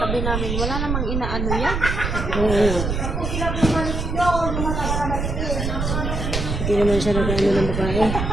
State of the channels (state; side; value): noise; right; rumble, 2 dB below the sound